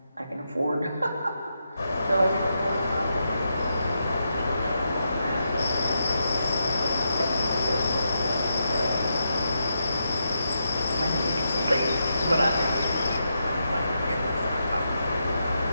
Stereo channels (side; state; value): both; inverted; correlation -0.84